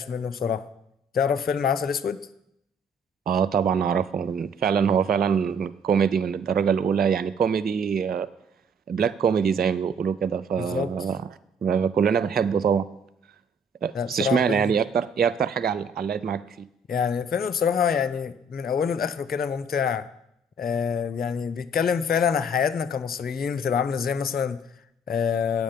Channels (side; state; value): both; normal; correlation 0.59